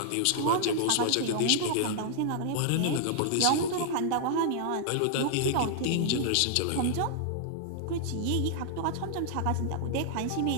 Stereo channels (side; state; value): both; different; correlation -0.01